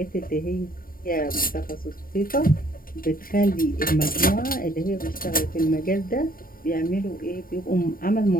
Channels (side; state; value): right; late; 0.42 ms